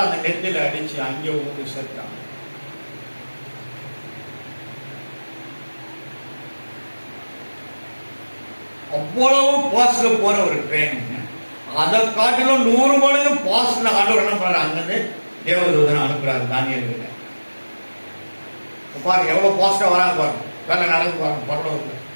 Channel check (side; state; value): both; inverted; correlation -1.00